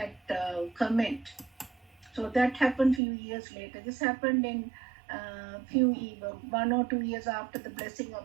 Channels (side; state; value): left; drops out; at 3.0 s